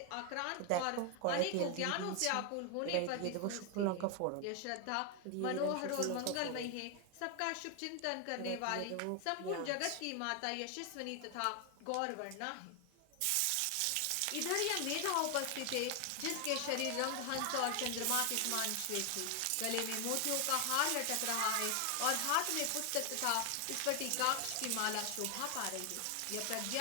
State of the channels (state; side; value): different; both; correlation 0.00